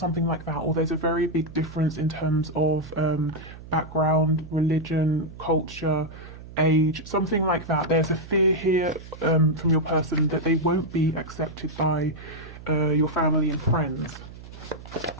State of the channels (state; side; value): noise; right; hum, 15 dB below the sound